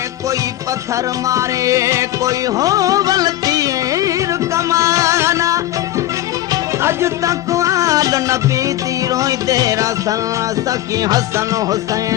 कोई पत्थर मारे कोई होवल तीर कमाना अज तक आल नबी तीरों तेरा सन सखी हसन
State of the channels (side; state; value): right; quieter; 14.3 dB